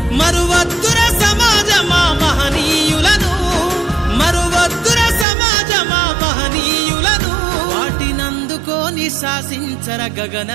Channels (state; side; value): drops out; left; at 5.2 s